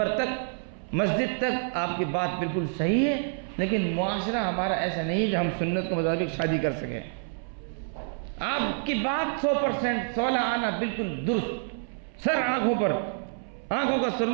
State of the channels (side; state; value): left; silent; 60 dB below the other